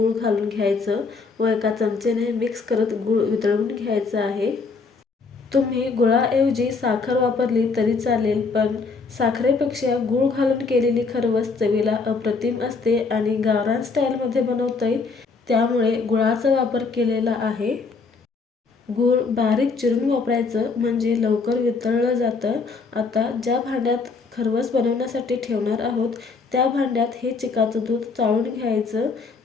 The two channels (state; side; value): quieter; right; 4.5 dB